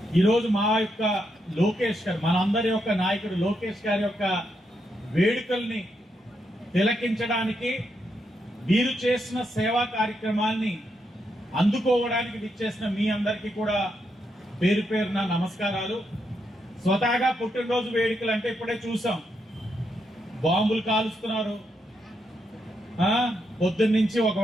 ఈరోజు మా యొక్క లోకేష్ గారు, మనందరి యొక్క నాయకుడు లోకేష్ గారి యొక్క వేడుకల్ని తిలకించడానికి, మీరు చేసిన సేవా కార్యక్రమాల్ని అందుకోవడానికి విచ్చేసిన మీ అందరికీ కూడా పేరు పేరున నమస్కారాలు. స్వతహాగా పుట్టినరోజు వేడుకలు అంటే ఇప్పుడే చూసాం, బాంబులు కాలుస్తున్నారు. పొద్దున్నుంచి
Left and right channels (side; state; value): both; normal; correlation 0.81